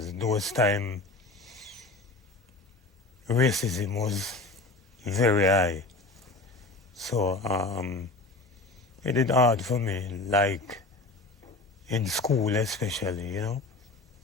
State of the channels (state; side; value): quieter; right; 3.2 dB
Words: those time racism was very high. So it is hard for me, like in school especially, you know.